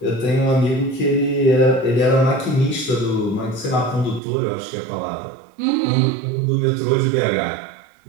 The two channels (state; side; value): drops out; left; at 4.2 s